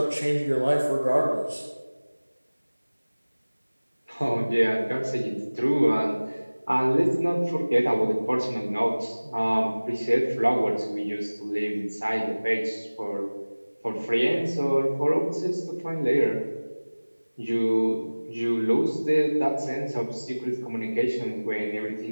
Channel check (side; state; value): both; inverted; correlation -1.00